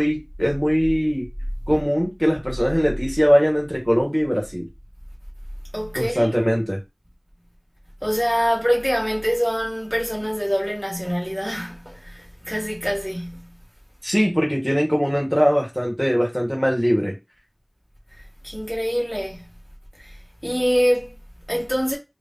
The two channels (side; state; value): both; identical; correlation 1.00